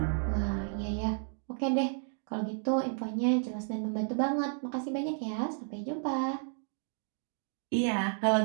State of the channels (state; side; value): silent; left; 55 dB below the other